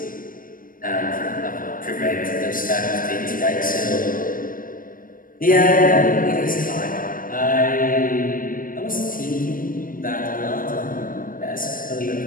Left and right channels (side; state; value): right; late; 0.40 ms